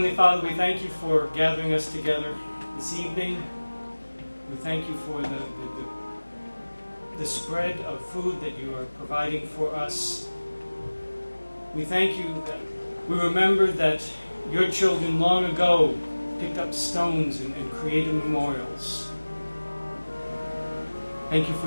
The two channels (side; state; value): both; inverted; correlation -1.00